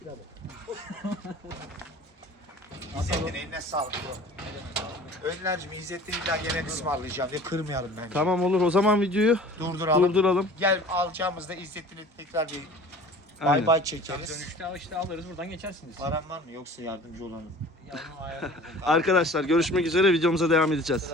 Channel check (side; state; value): both; normal; correlation 0.44